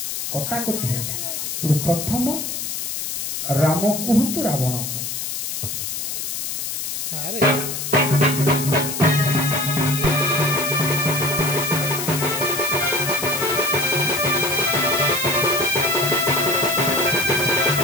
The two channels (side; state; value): left; noise; hiss, 4 dB below the sound